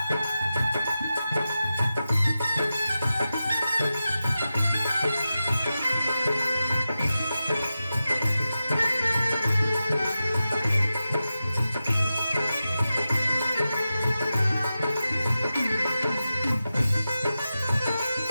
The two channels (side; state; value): both; inverted; correlation -0.92